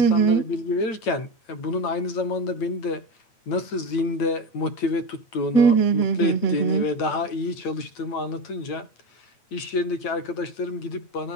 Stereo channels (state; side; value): late; right; 9.0 ms